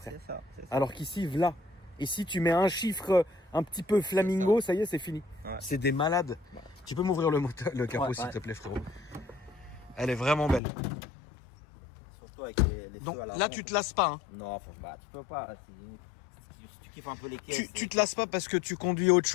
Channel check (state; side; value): drops out; right; at 10.6 s